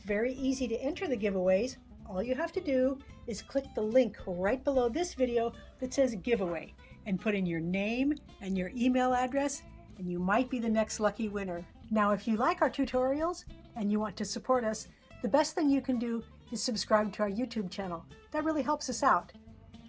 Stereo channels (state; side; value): identical; both; correlation 1.00